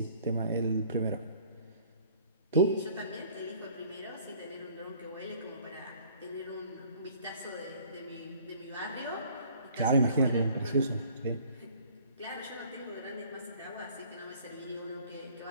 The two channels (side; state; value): both; inverted; correlation -0.53